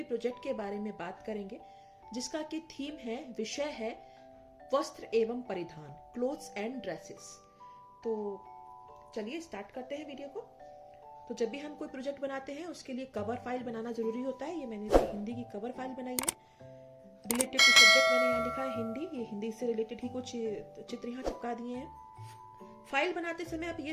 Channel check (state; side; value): identical; both; correlation 1.00